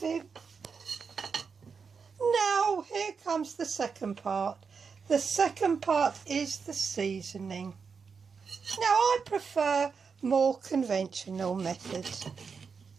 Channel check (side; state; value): left; quieter; 5.6 dB